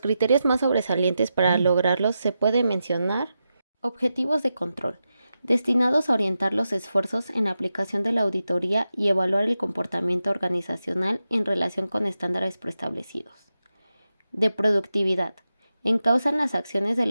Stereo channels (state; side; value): inverted; both; correlation -0.90